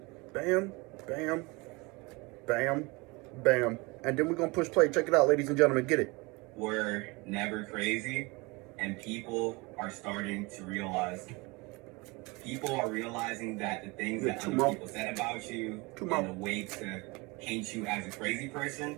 Bam, bam, bam, bam. And then we're gonna push play. Check it out, ladies and gentlemen. Get it. We're never crazy, and people are starting to realize. People are realizing that the things that other people said about you and the way to paint you as a crazy person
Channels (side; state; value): left; quieter; 25.7 dB